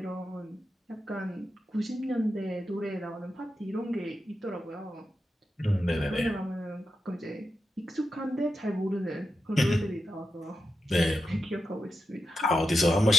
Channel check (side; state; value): both; normal; correlation 0.88